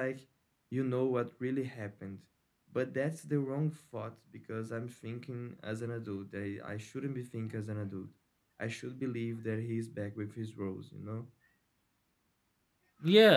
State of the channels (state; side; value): identical; both; correlation 1.00